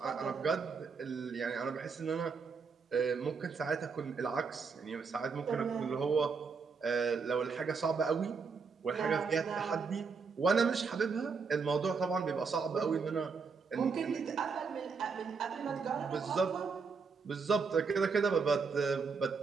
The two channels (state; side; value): quieter; left; 5.2 dB